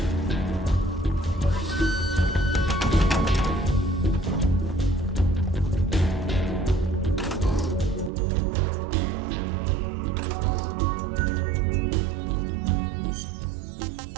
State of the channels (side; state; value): left; drops out; at 8.1 s